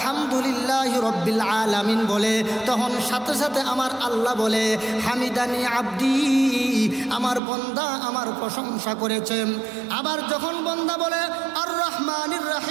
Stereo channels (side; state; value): left; drops out; at 7.4 s